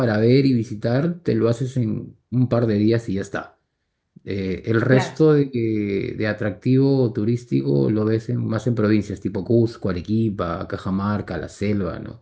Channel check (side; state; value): both; identical; correlation 1.00